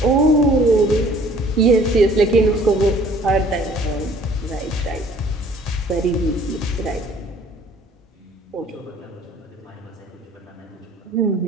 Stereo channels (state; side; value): normal; both; correlation 0.55